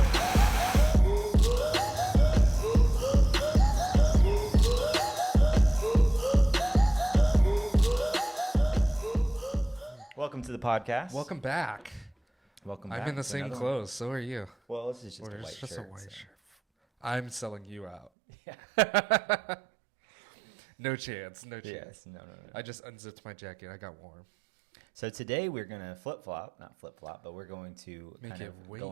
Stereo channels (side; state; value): left; drops out; at 18.1 s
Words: Welcome to the podcast. Welcome back. Welcome back. I'm in the same clothes, so are you. Well, this is just a white shirt. I'm selling you out. Yeah. No chance. Yes, no. I just unzipped my jacket. I got warm. So today we're going to not flip-flop, but we're going to Make kind it of way